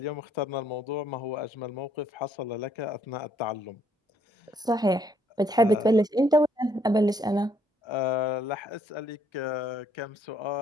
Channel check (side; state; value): both; normal; correlation 0.68